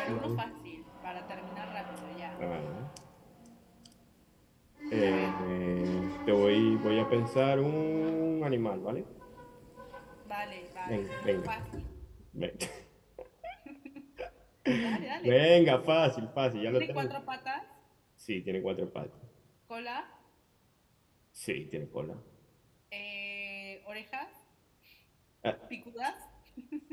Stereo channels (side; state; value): both; identical; correlation 1.00